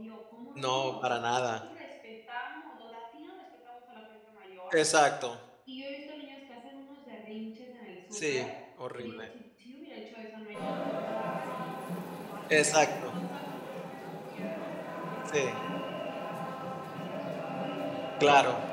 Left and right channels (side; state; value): both; identical; correlation 1.00